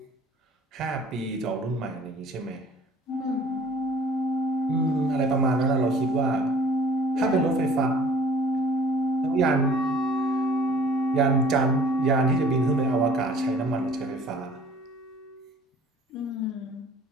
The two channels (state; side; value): normal; both; correlation 0.52